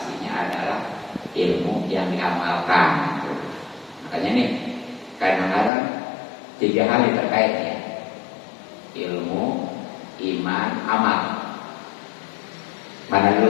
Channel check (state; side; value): drops out; right; at 5.7 s